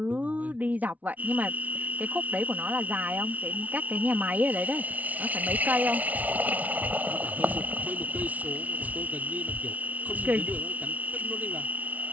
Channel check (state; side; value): late; left; 0.073 ms